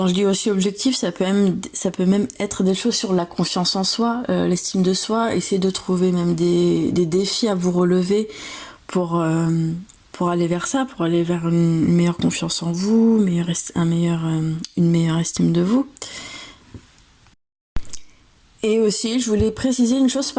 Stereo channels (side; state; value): both; identical; correlation 1.00